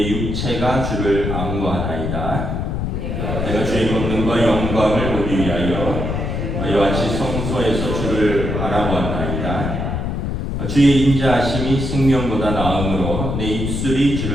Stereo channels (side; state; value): left; noise; rumble, 2 dB below the sound